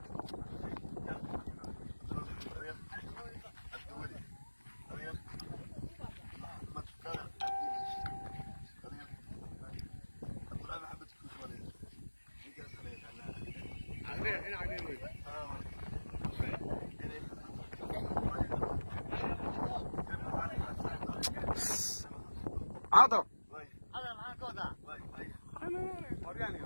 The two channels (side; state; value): both; inverted; correlation -1.00